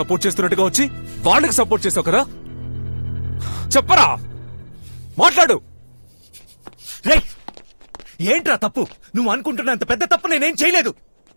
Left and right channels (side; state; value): both; inverted; correlation -1.00